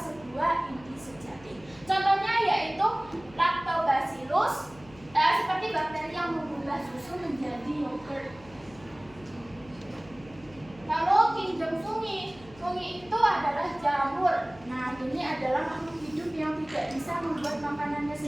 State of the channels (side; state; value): left; noise; hum, 23 dB below the sound